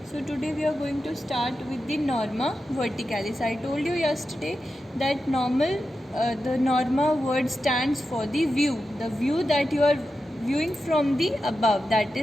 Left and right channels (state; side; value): normal; both; correlation 0.90